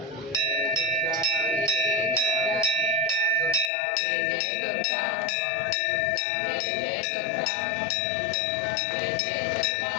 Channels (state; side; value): drops out; right; at 3.7 s